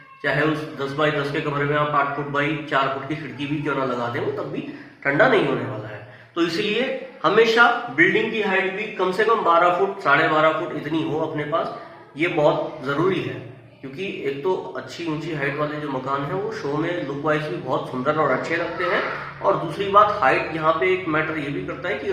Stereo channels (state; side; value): identical; both; correlation 1.00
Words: चाहे उस 10 बाई 10 के कमरे में आप 8 फुट बाई 4 फुट की खिड़की भी क्यों ना लगा दें, वो तब भी ठंडा नहीं होने वाला है। तो इसलिए हमेशा बिल्डिंग की हाइट भी कम से कम 12 फुट 12.5 फुट इतनी हो अपने पास, ये बहुत जरूरी है। क्योंकि एक तो अच्छी ऊंची हाइट वाले जो मकान है वो शो में लुक वाइज भी बहुत सुंदर और अच्छे लगते हैं, और दूसरी बात हाइट यहाँ पे एक मैटर ये भी करता है कि